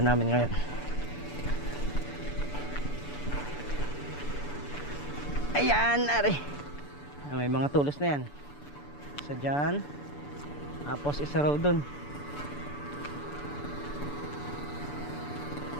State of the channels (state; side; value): late; right; 6.9 ms